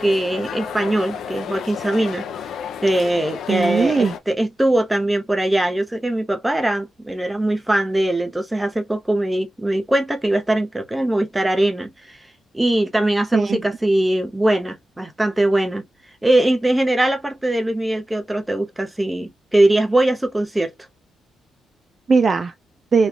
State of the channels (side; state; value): both; normal; correlation 0.95